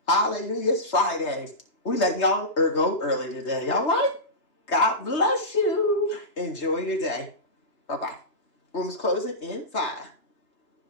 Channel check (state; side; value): late; right; 3.2 ms